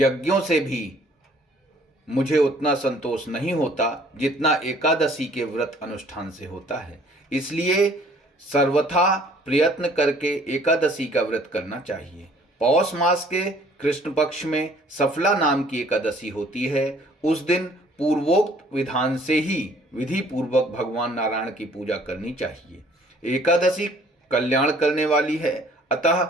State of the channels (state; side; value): normal; both; correlation 0.57